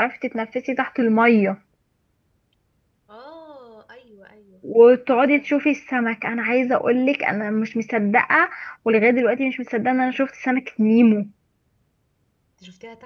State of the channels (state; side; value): identical; both; correlation 1.00